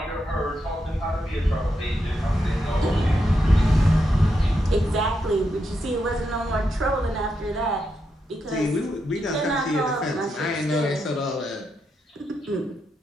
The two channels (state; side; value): normal; both; correlation 0.83